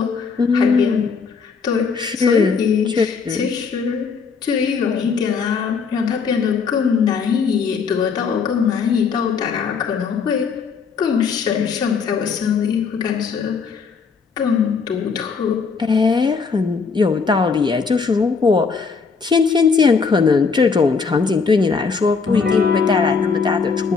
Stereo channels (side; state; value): right; quieter; 5.3 dB